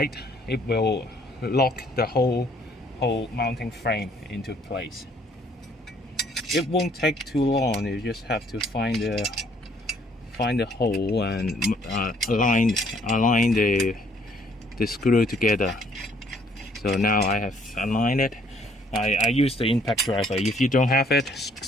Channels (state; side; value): normal; both; correlation 0.63